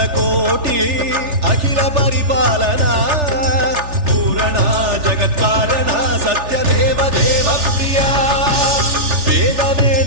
కోటి అఖిల పరిపాలన పూరణ జగత్కారణ సత్యదేవ దేవ ప్రియ వేద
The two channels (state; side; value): late; left; 3.4 ms